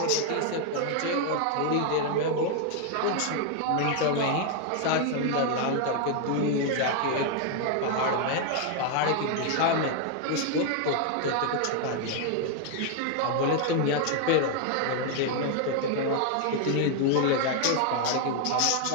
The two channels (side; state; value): both; different; correlation 0.00